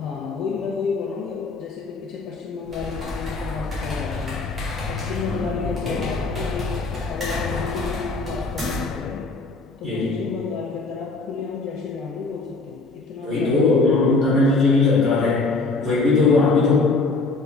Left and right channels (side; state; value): right; quieter; 3.6 dB